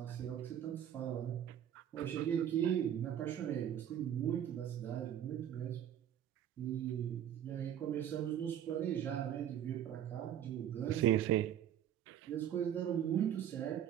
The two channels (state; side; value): quieter; left; 10.2 dB